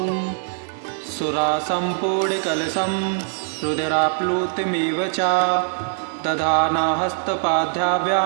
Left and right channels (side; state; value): left; silent; digital silence